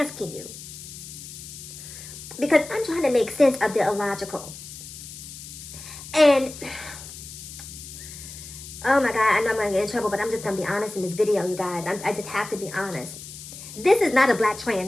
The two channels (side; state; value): left; noise; hiss, 13 dB below the sound